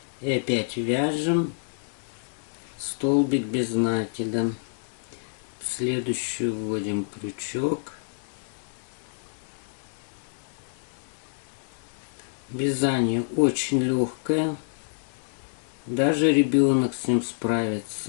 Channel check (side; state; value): right; silent; digital silence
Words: И опять вяжем столбик без накида. Следующую вводим крючок. Вязание очень легкое, даже ребенок с ним